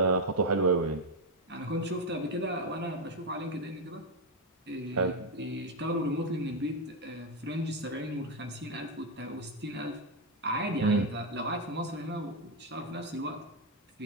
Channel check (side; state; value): both; normal; correlation 0.05